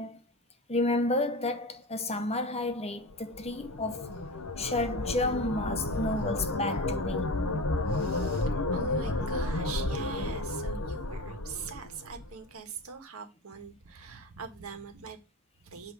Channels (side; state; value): both; normal; correlation 0.28